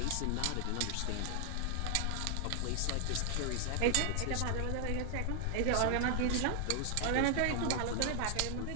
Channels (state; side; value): different; both; correlation 0.00